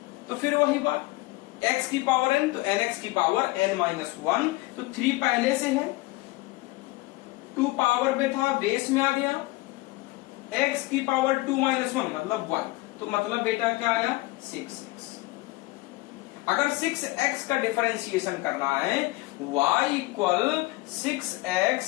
तो फिर वही बात x की पावर n, तो nx की पावर n माइनस 1, तो 3 पहले से है, 2 पावर में था बेस में आ गया, x की पावर 2 माइनस 1 मतलब 1, तो मतलब बेटा क्या आया 6x। अगर 6x का डिफरेंशिएशन करना है y इक्वल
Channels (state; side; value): quieter; right; 21.0 dB